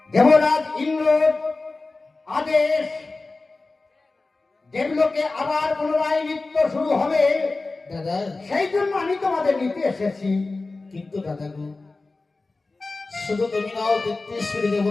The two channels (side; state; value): right; quieter; 3.5 dB